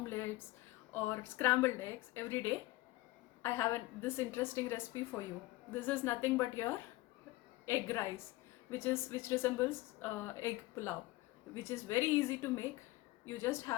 or scrambled eggs every day? I have this interesting recipe for you. This is nothing but your egg rice, which resembles egg pulao, which is very easy to make. You just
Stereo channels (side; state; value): right; quieter; 19.2 dB